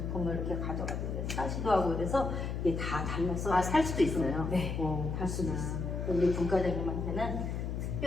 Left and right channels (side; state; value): left; noise; hum, 3 dB below the sound